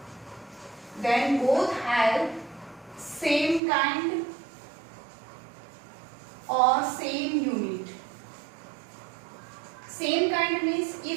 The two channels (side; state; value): left; drops out; at 3.6 s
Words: then both have same kind or same unit. Same kind means